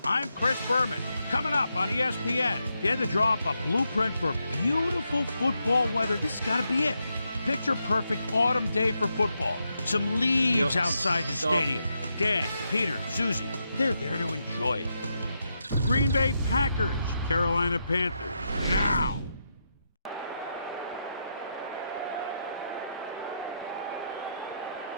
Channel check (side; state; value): both; inverted; correlation -0.83